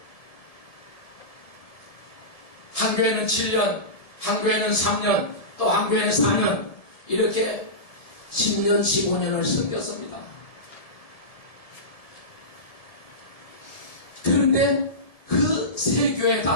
한 교회는 7년, 한 교회는 3년, 또 한 교회는 4년 이렇게 10년, 15년을 섬겼습니다. 그런데 그 세 교회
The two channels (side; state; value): right; late; 1.7 ms